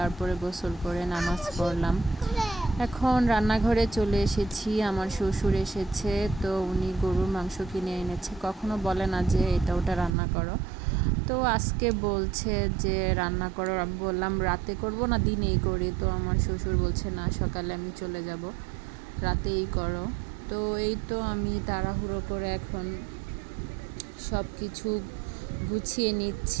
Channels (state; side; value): drops out; left; at 10.1 s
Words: গোসল করে নামাজ পড়লাম। এখন রান্নাঘরে চলে এসেছি, আমার শ্বশুর এসেছে, তো উনি গরুর মাংস কিনে এনেছে। কখনো বলে না যে এটা ওটা রান্না করো, তো আজকে বলছে যে রান্না করো। আমি বললাম রাতে করব না দিনেই করি, তো আমার শ্বশুর বলছে না সকালে আমি চলে যাব, রাতেই করো। তো এই তো আমি তাড়াহুড়ো করে এখন সব কিছু গুছিয়ে